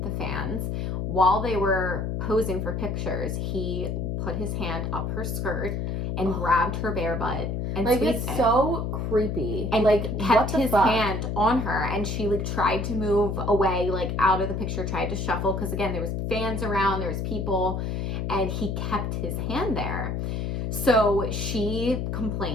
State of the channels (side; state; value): left; noise; hum, 2 dB below the sound